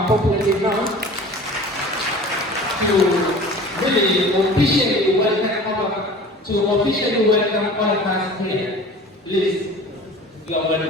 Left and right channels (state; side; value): normal; both; correlation 0.41